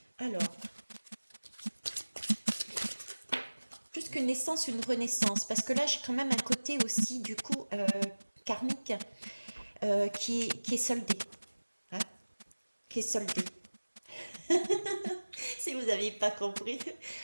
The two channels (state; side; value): inverted; both; correlation -1.00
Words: Alors, plus qu'une naissance, une renaissance. Parce que là, j'ai quand même un côté aussi, du coup, karmique, qui est soldé. Hein, qui est soldé. Si vous n'aviez pas compris,